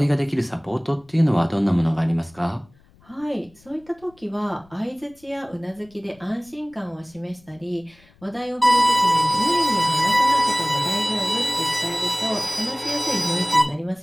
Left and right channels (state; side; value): noise; left; rumble, 29 dB below the sound